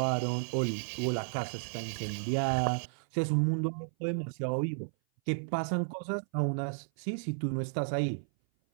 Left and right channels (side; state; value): left; silent; 56 dB below the other